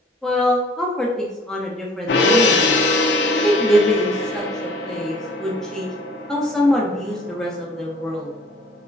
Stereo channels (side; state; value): both; normal; correlation 0.52